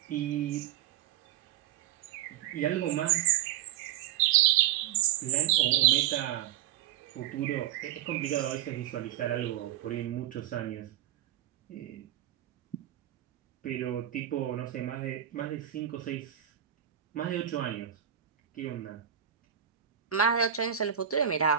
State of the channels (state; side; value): quieter; left; 11.2 dB